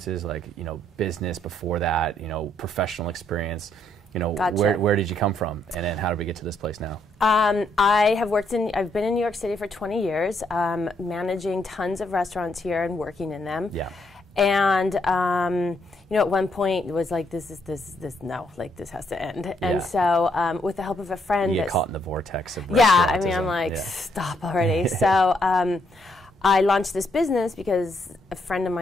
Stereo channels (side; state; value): both; normal; correlation 0.73